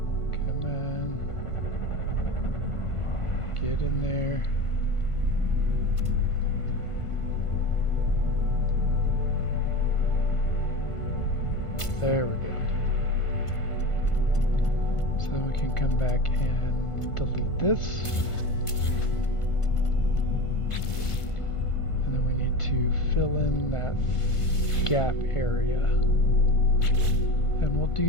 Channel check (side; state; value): right; late; 1.5 ms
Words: come on, get in there. There we go. Then we can come back and delete this. And then we need to fill in that gap area. And we'll